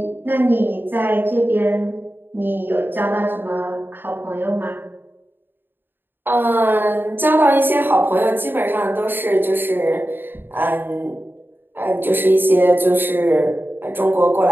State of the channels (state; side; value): late; left; 0.097 ms